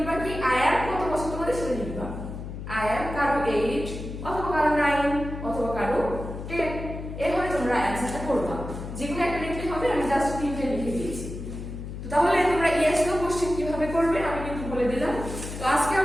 কি আই অ্যাম কত বছর তোমাদের সেটা লিখবা। আই অ্যাম কারো 8 অথবা কারো 9 অথবা কারো 10, এভাবে তোমরা অ্যান্সারটা করবা। যেকোনো একটা লিখলে হবে, আমি জাস্ট 3টে লিখে দিয়েছি। তো তাহলে তোমরা ইয়েস নো কোশ্চেন কিভাবে করবে আমি কিন্তু বলে দিলাম। তো আজকে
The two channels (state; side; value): noise; left; hum, 8 dB below the sound